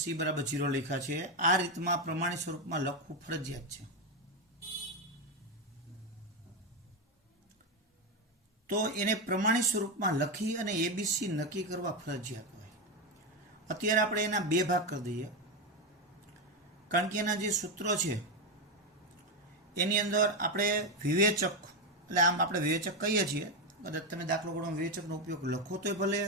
c બરાબર 0 લખ્યા છે. આ રીતમાં પ્રમાણિત સ્વરૂપમાં લખવું ફરજિયાત છે. તો એને પ્રમાણિત સ્વરૂપમાં લખી અને એબીસી નક્કી કરવા ફરજિયાત હોય. અત્યારે આપણે એના 2 ભાગ કરી દઈએ, કારણ કે એના જે સૂત્રો છે એની અંદર આપણે વિવેચક, એટલે આમ આપણે વિવેચક કહીએ છીએ, કદાચ તમે દાખલો ગણો વિવેચકનો ઉપયોગ લખો તોય ભલે,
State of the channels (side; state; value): both; normal; correlation 0.09